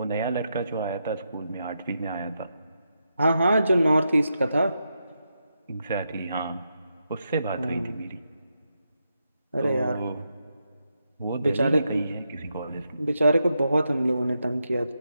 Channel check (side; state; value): both; inverted; correlation -0.84